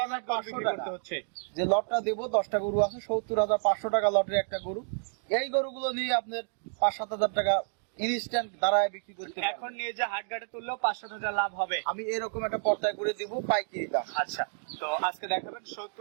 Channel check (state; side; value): silent; left; digital silence